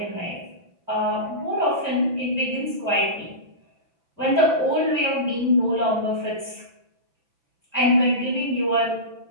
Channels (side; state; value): left; late; 6.0 ms